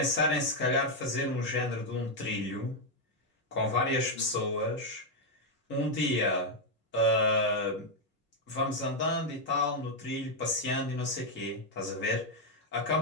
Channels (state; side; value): normal; both; correlation 0.01